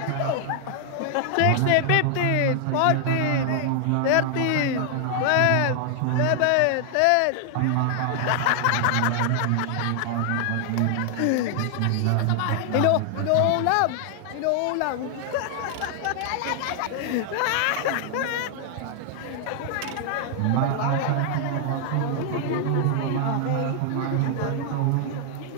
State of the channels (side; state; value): both; different; correlation 0.00